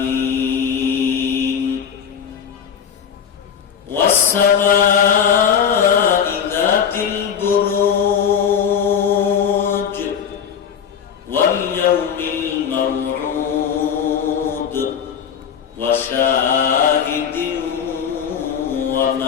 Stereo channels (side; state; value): right; quieter; 7.8 dB